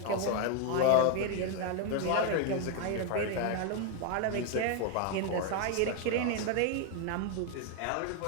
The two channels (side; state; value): both; different; correlation 0.01